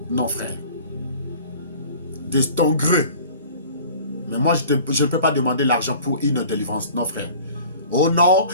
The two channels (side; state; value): both; inverted; correlation -0.46